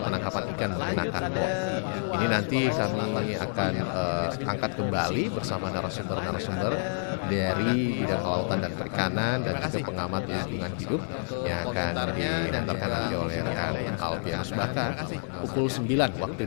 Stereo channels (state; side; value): silent; right; 58 dB below the other